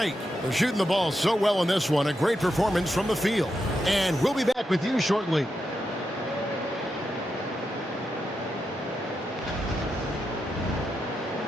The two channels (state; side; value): normal; both; correlation 0.86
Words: They're shooting the ball so well in this one. A great performance from the field. And we'll be back with you shortly.